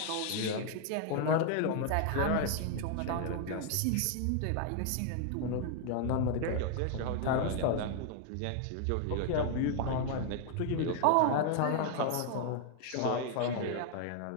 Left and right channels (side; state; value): both; different; correlation 0.00